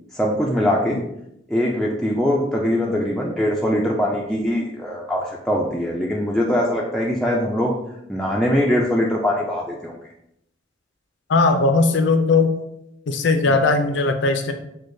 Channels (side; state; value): both; normal; correlation 0.52